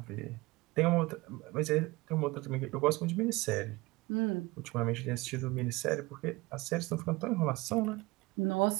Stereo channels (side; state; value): left; quieter; 22.4 dB